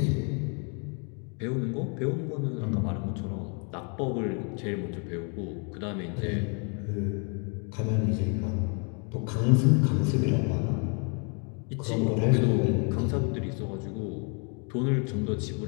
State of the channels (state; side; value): quieter; right; 37.0 dB